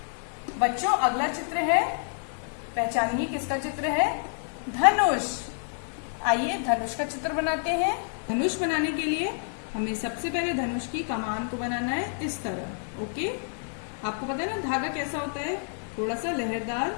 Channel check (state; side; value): silent; right; 59 dB below the other